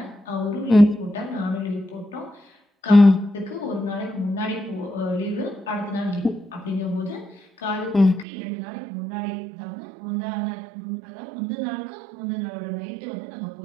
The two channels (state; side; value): drops out; left; at 8.2 s